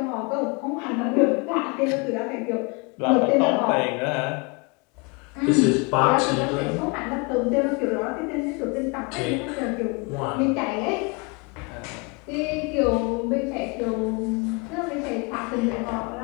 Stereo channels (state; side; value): quieter; right; 30.6 dB